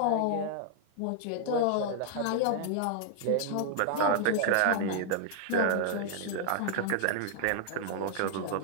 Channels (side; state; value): both; different; correlation -0.01